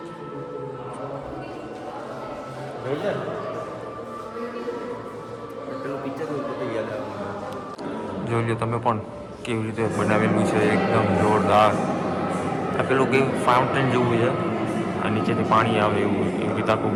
પેલું પિક્ચર યાદ આવે. જોઈ લો તમે પણ કેવી રીતે બનાવેલું છે, એકદમ જોરદાર. આ પેલું કેવું ફાઉન્ટેન જેવું છે, આ નીચેથી પાણી આવે એવું. એવી રીતે આખું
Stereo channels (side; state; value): both; identical; correlation 1.00